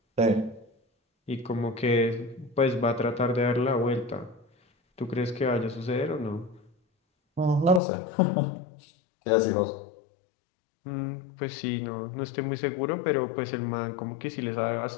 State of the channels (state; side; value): drops out; right; at 7.8 s